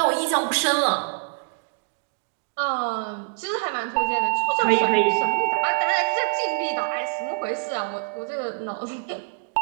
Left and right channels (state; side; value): silent; left; digital silence